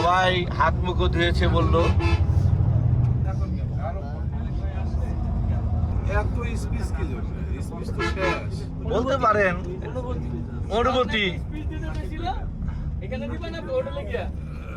হাত মুখ ধুয়েছে বললো। বলতে পারেন অনুভূতি।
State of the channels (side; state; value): both; identical; correlation 1.00